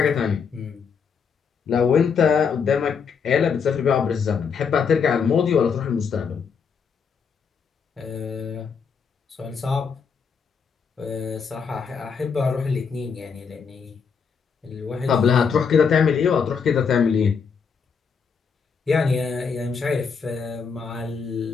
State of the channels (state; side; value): quieter; right; 6.1 dB